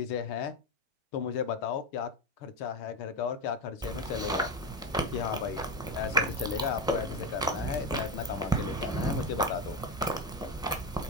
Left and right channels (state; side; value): normal; both; correlation 0.15